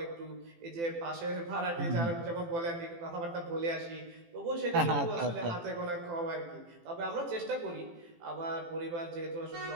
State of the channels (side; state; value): left; late; 18 ms